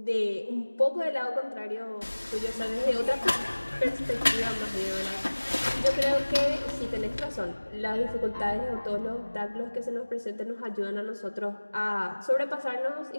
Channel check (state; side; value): inverted; both; correlation -1.00